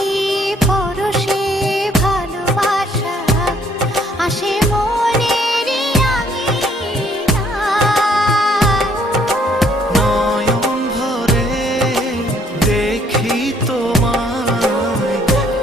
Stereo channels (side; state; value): both; normal; correlation 0.65